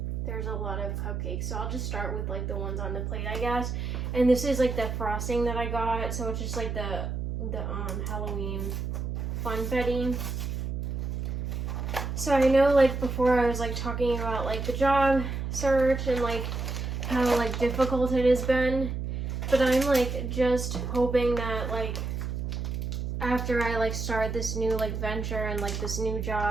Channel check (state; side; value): noise; right; hum, 3 dB below the sound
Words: there's a lot of cupcakes. So I'll just start with like the ones on the plate, I guess. And this is like the frosting that I got, so it's just like the Halloween funfetti. So I know like before I was like talking about like the job search and like how like difficult it has been, but I'm like just hoping that like after I like start this new like venture and like this new